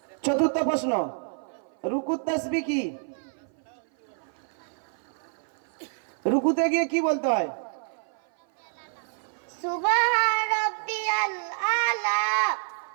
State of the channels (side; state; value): left; silent; 56 dB below the other